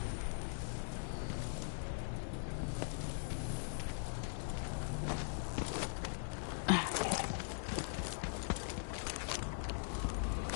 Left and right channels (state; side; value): silent; right; digital silence